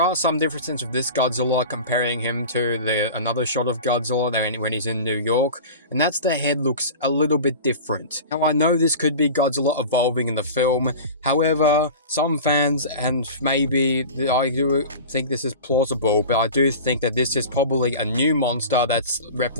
are some differences with this Godzilla comparing him to another shot of Godzilla when he's in New York, and that's the head looks a little bit different. Now I know this could be Godzilla evolving in the film, however, some fans, and maybe I do think this is plausible, but I do think that this is probably a new monster that's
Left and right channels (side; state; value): both; inverted; correlation -0.34